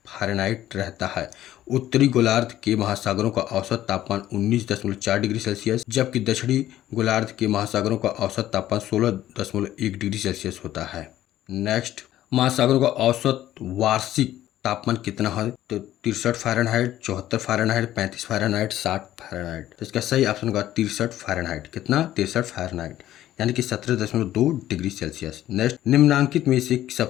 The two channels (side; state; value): right; quieter; 13.2 dB